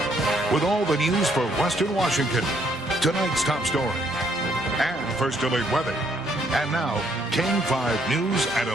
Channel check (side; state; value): both; normal; correlation 0.69